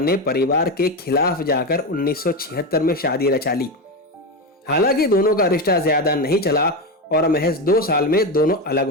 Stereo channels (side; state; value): both; normal; correlation 0.15